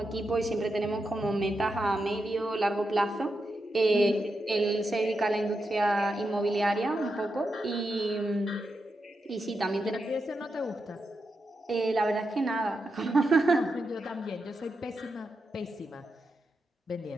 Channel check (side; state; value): both; normal; correlation 0.86